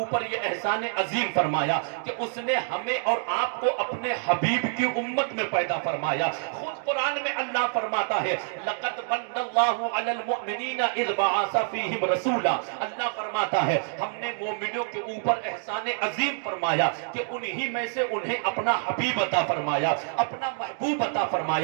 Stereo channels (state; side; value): silent; left; digital silence